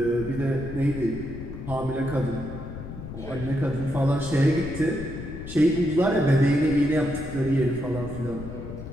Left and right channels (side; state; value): left; noise; rumble, 10 dB below the sound